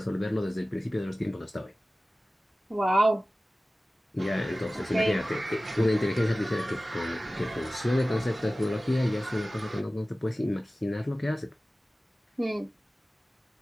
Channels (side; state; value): both; normal; correlation 0.97